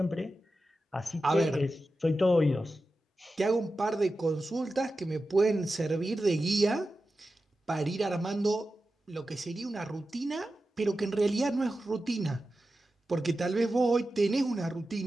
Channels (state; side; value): normal; both; correlation 0.92